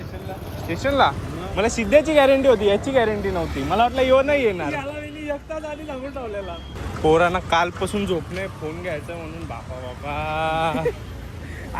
स्टेशनला मला सिद्ध्याची गॅरंटी होती, याची गॅरंटी नव्हती. मला वाटलं येऊ नाही येणार. पोरांना कालपासून झोप नाही, फोन घ्यायचा म्हणून. बापा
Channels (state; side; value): identical; both; correlation 1.00